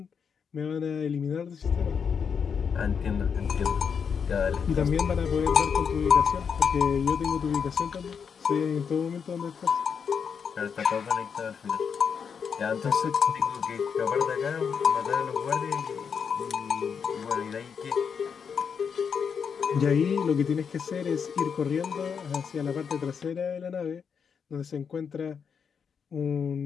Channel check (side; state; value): right; quieter; 6.6 dB